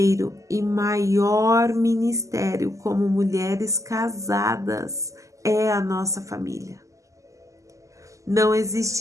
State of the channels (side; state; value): left; late; 0.16 ms